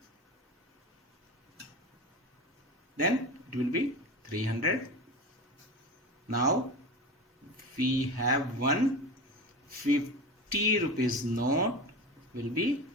then it will be 300. Now we have 150 rupees note, will be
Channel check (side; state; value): both; normal; correlation 0.27